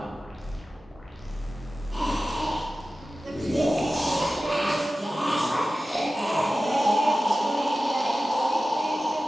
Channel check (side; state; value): both; normal; correlation 0.95